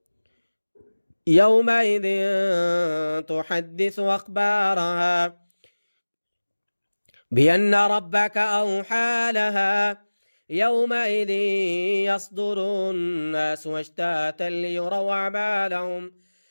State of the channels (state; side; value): inverted; both; correlation -1.00